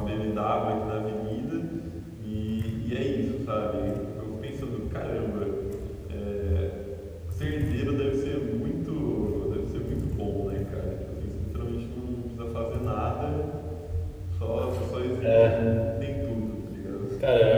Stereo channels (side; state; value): both; identical; correlation 1.00